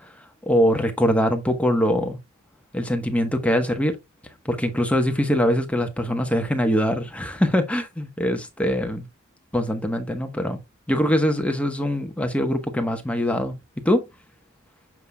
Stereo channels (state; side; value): normal; both; correlation 0.78